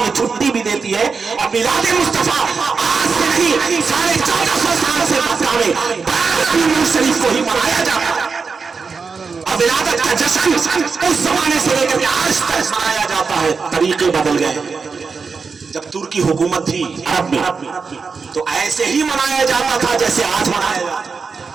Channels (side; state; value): left; quieter; 5.0 dB